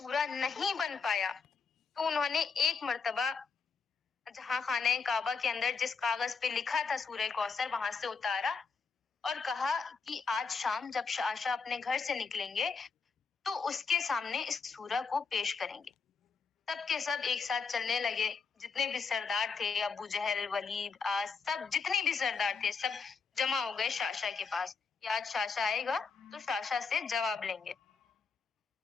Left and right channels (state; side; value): quieter; right; 5.3 dB